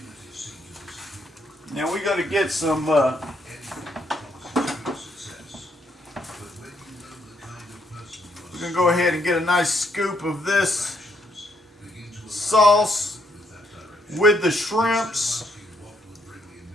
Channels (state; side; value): normal; both; correlation 0.73